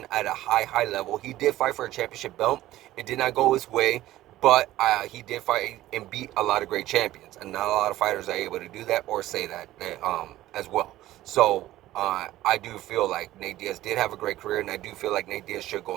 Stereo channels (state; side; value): quieter; left; 15.2 dB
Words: at a high level. He did fight for a championship belt. It did not go his way, but he did fight and beat a lot of great champions, and not a lot of fighters are able to do that or say that as well. So I do feel like Nate Diaz did have a great career, and I do feel like Nate Diaz should go